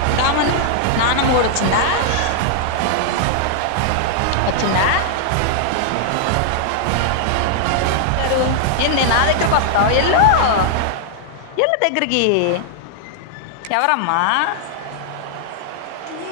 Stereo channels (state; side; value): different; both; correlation -0.01